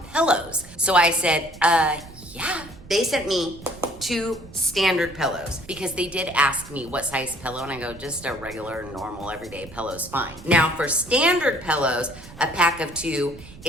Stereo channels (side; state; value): right; noise; rumble, 18 dB below the sound